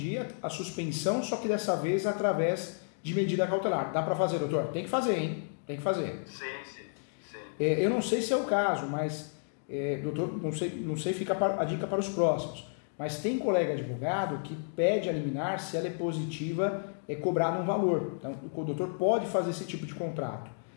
a suspensão, só que dessa vez através de medida cautelar. Dá para fazer, doutor? Tem que fazer, hein? Tem que fazer. Sim. Eu não sei se é o caso, mas doutor, não sei, fica a dica para os próximos. Mas tem colega advogado que pede a liminar, se ela é positiva, é cobrado um valor. Então o doutor pode fazer esse tipo de contrato.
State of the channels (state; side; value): silent; right; digital silence